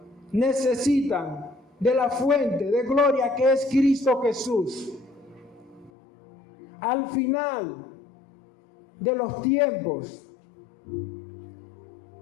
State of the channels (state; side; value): drops out; right; at 5.9 s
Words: necesitan de la fuente de gloria que es Cristo Jesús. Al final de los tiempos,